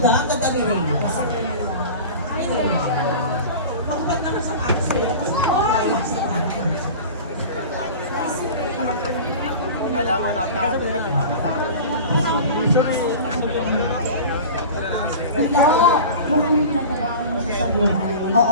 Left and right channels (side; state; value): both; inverted; correlation -0.35